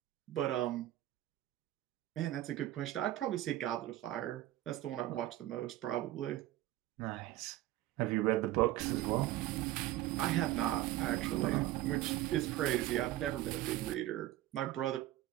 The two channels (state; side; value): quieter; left; 14.9 dB